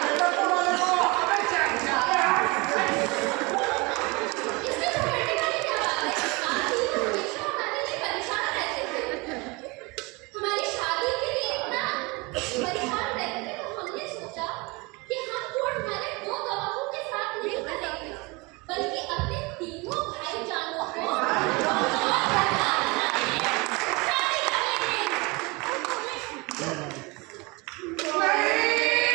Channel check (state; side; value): quieter; left; 26.2 dB